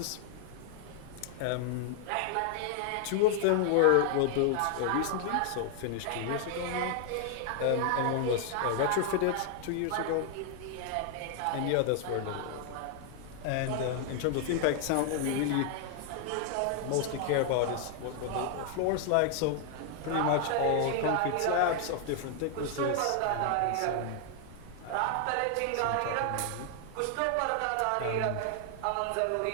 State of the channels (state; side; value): different; both; correlation 0.00